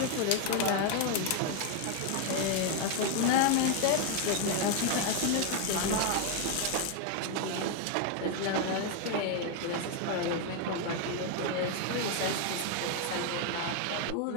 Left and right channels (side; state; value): both; different; correlation 0.01